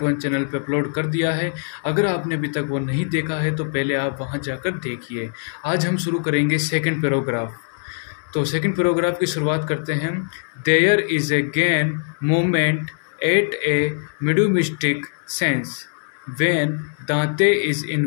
1 चैनल पे अपलोड कर दिया है। अगर आपने अभी तक वो नहीं देखा है तो पहले आप वहाँ जाकर देखिए। आज हम शुरू करेंगे सेकंड पैराग्राफ। तो सेकंड पैराग्राफ की शुरुआत करते हैं। There is a gain moment at a mid mystic sense when Dante is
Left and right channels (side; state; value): right; silent; digital silence